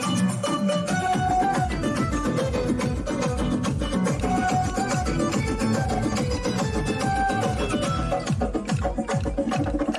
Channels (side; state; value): both; identical; correlation 1.00